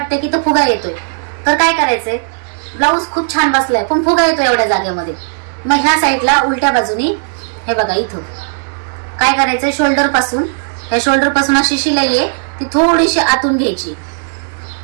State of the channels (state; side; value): silent; left; digital silence